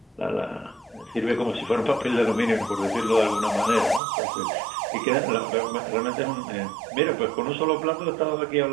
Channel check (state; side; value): drops out; left; at 4.0 s